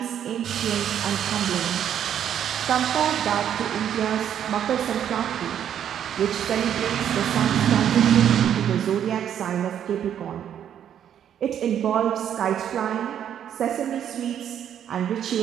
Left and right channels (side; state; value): left; quieter; 9.6 dB